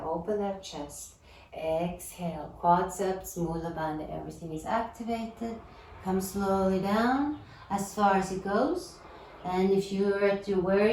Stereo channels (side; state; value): both; identical; correlation 1.00